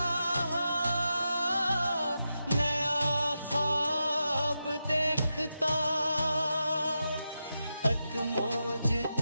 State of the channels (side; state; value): both; inverted; correlation -0.88